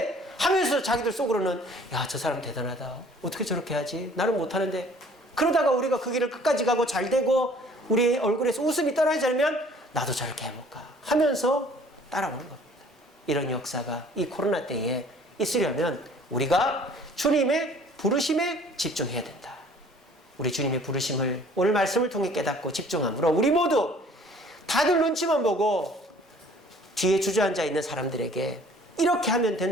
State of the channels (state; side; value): normal; both; correlation 0.54